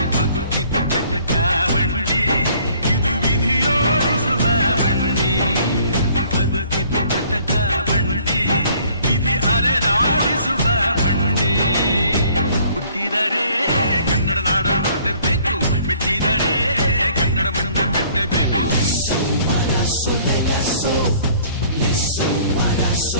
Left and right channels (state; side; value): inverted; both; correlation -0.57